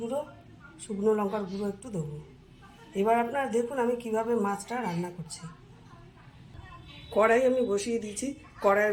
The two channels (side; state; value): both; identical; correlation 1.00